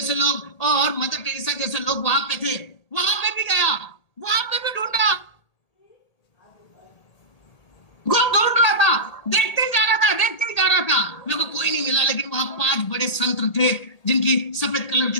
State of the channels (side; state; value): right; late; 1.8 ms